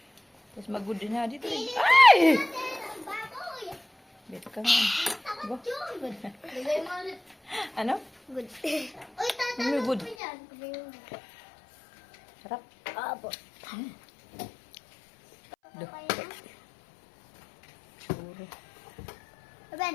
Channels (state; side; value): drops out; right; at 10.2 s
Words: Tapos mag-good din ha. Dito rin. Ay! Ang baboy. Dito ka nga. Takot yun. Lagay mo ulit. Ano? Good. Uy, Ano tatanong good? ko yan. Sarap. Abo. Do.